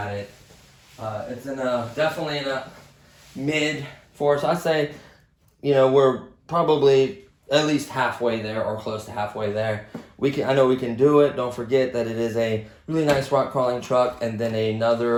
it. It's definitely in a mid four. So I say, you know, we're probably at least halfway there or close to halfway there. I know we can do it. Don't forget that it is a really nice rock crawling truck, and then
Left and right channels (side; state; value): both; identical; correlation 1.00